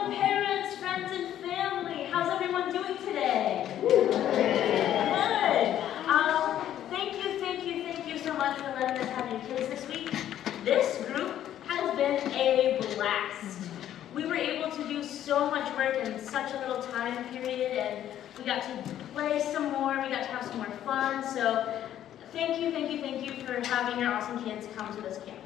friends, and family, how's everyone doing today? Good. Thank you so much for letting us have your kids this week. This group has been a blast. We were able to do so much work in such a little time period, and we got to play some more, we got to have some more fun, so thank you for having your awesome kids come to this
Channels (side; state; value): right; quieter; 11.4 dB